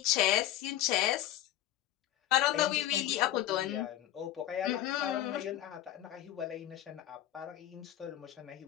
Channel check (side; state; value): right; quieter; 13.2 dB